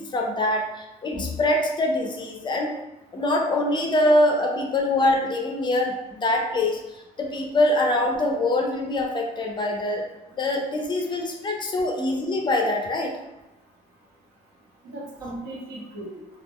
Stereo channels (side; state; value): both; normal; correlation 0.49